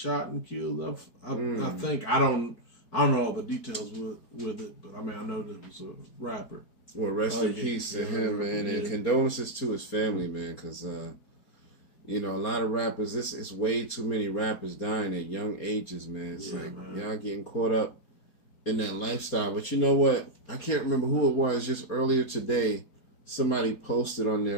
and killed. I think I don't know all the details with it, but I mean I know that it was a rapper. Well, rest in peace to him, man, and condolences to his family, man, because you know, a lot of rappers. It's way too many rappers dying at young ages, man. It's y'all getting caught up in that lifestyle. But you know what? I can't remember who it was. Just earlier today, somebody posted on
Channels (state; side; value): late; right; 4.3 ms